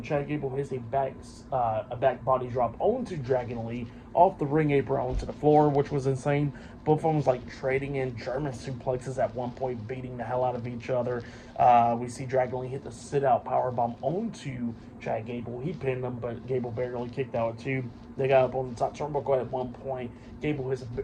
Chad Gable hits a back body drop onto Dragon Lee off the ring apron onto the floor, which was insane. Both of them was like trading in German suplexes at one point, beating the hell out of each other. We see Dragon Lee hit the sit-out powerbomb onto Chad Gable. He pinned him, but Gable barely kicked out at 2. They got up on the top turnbuckle at one point. Gable hits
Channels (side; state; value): both; identical; correlation 1.00